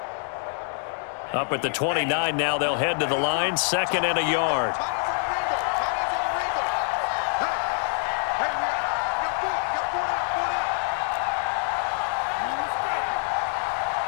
Up at the 29 now, they'll head to the line, 2nd and a yard.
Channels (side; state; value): right; silent; 55 dB below the other